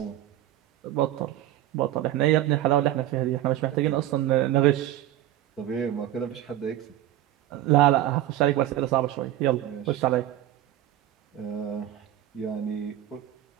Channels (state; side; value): quieter; left; 13.1 dB